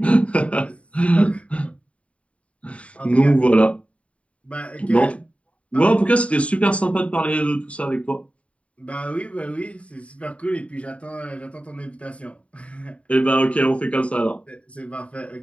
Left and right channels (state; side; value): late; right; 0.064 ms